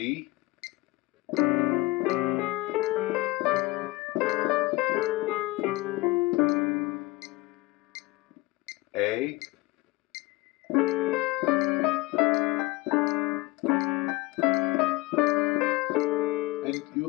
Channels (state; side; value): quieter; right; 21.3 dB